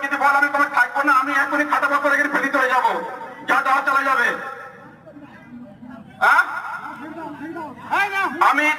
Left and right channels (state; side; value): identical; both; correlation 1.00